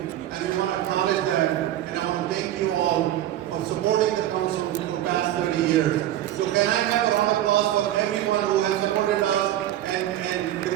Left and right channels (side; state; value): left; quieter; 12.9 dB